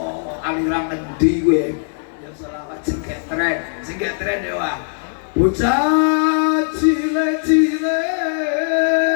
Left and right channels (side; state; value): right; silent; digital silence